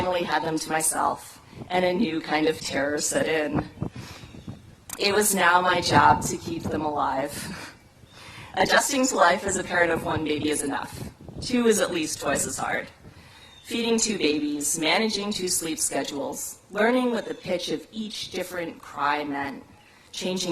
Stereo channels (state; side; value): identical; both; correlation 1.00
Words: had them to myself, and a new kind of terror set in. It was now my job to keep them alive. Adjusting to life as a parent of one baby is enough. 2 is at least twice as hard. Feeding 2 babies, managing 2 sleep schedules, learning what the pitch of each different cry meant,